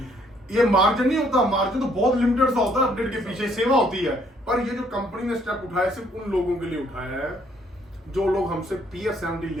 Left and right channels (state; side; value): normal; both; correlation 0.66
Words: ये मार्जिन नहीं होता, मार्जिन तो बहुत लिमिटेड सा होता है, अपडेट के पीछे सेवा होती है। पर ये जो कंपनी ने स्टेप उठाया सिर्फ उन लोगों के लिए उठाया है जो लोग हमसे PS70